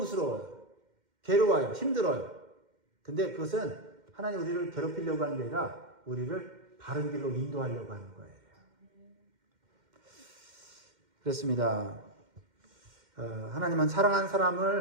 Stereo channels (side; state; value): left; late; 2.1 ms